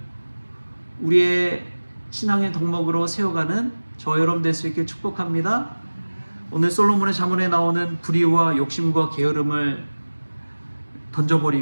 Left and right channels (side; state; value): both; inverted; correlation -1.00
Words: 우리의 신앙의 덕목으로 세워가는 저 여러분 될 수 있게 축복합니다. 오늘 솔로몬의 잠언에 나오는 불의와 욕심과 게으름을